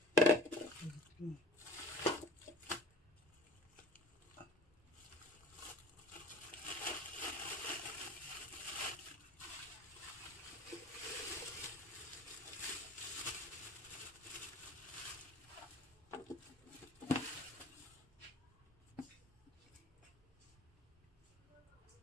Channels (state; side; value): normal; both; correlation 0.43